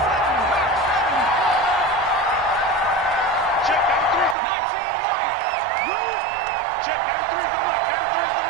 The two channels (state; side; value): drops out; left; at 4.4 s